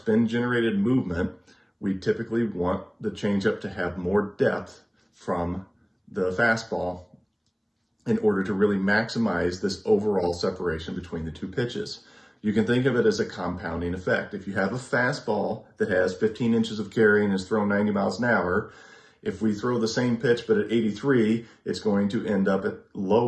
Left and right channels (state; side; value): identical; both; correlation 1.00